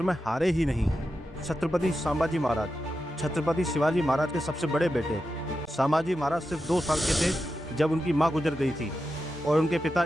में हारे ही नहीं। छत्रपति संभाजी महाराज। छत्रपति शिवाजी महाराज के सबसे बड़े बेटे संभाजी महाराज सिर्फ 2 साल के थे जब उनकी मां गुजर गई थी और उनके पिता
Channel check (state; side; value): normal; both; correlation 0.89